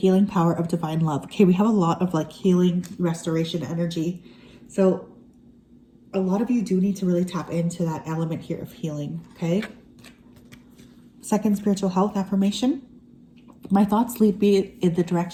power of divine love. Okay, we have a lot of like healing, restoration energy. So a lot of you do need to really tap into that element here of healing, okay? Second spiritual health affirmation. My thoughts lead me in the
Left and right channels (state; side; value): identical; both; correlation 1.00